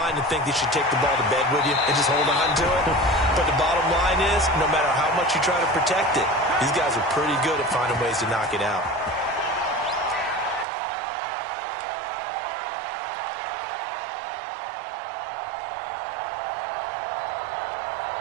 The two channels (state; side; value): drops out; left; at 10.7 s